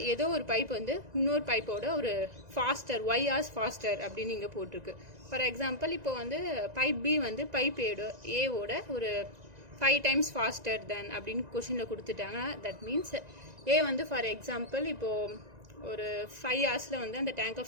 ஏதோ ஒரு பைப் வந்து இன்னொரு பைப்போட ஒரு ஃபாஸ்டர் y hours ஃபாஸ்டர் அப்படின்னு இங்கே போட்டிருக்கு. ஃபார் எக்ஸாம்பிள் இப்போ வந்து பைப் பி வந்து பைப் ஏவோட ஒரு 5 times ஃபாஸ்டர் தென் அப்படின்னு கொஷினில் கொடுத்துட்டாங்க. தட் மீன்ஸ் ஏ வந்து ஃபார் எக்ஸாம்பிள் இப்போது ஒரு 5 hours வந்து அந்த டேங்கை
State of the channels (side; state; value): left; late; 1.9 ms